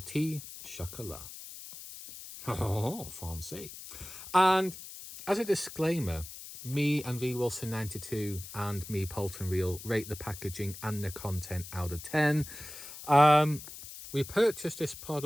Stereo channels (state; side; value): noise; left; hiss, 13 dB below the sound